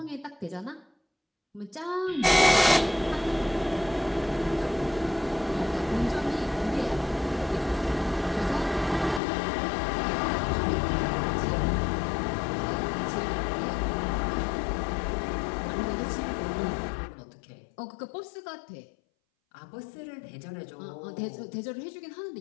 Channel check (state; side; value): drops out; right; at 9.2 s